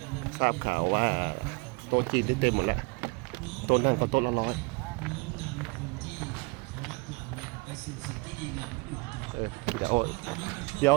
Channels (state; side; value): quieter; left; 27.4 dB